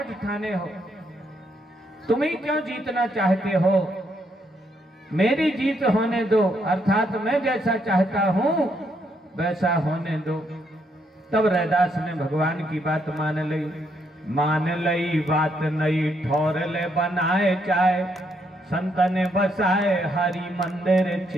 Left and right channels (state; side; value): normal; both; correlation 0.75